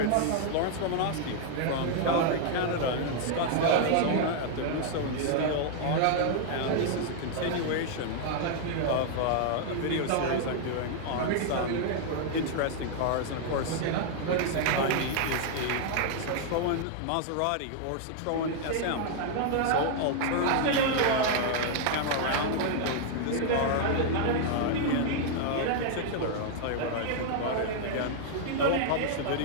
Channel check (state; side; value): different; both; correlation 0.00